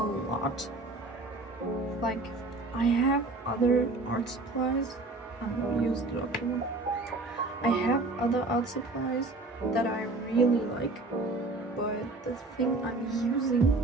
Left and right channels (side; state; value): left; quieter; 3.1 dB